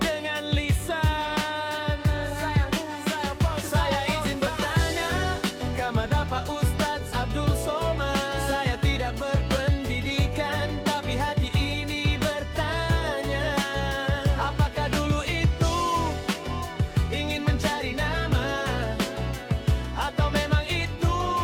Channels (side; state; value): both; identical; correlation 1.00